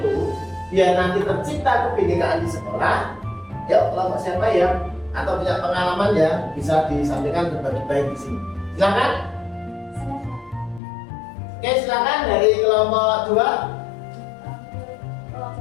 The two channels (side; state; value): right; drops out; at 10.8 s